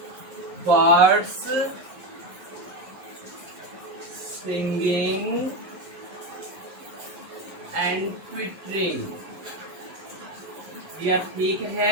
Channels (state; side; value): late; left; 11 ms